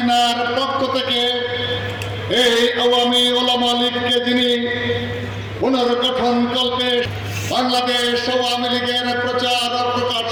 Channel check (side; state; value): both; identical; correlation 1.00